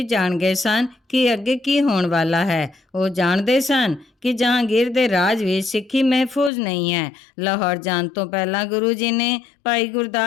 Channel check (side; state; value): right; drops out; at 6.5 s